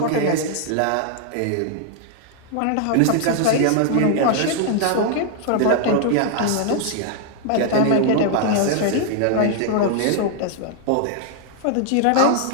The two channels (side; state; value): both; different; correlation 0.00